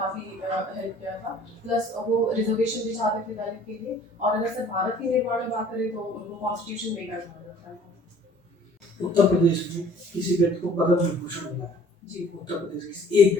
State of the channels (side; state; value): both; normal; correlation 0.53